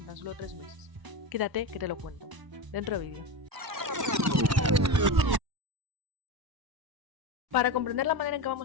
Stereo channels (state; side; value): late; left; 1.0 ms